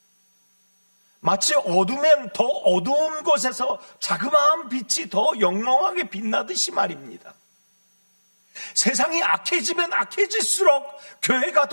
마치 어두면 더 어두운 곳에서 자그마한 빛이 더 영롱하게 빛나듯이 말입니다. 세상이 악해지면 악해질수록 교회가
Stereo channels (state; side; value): inverted; both; correlation -1.00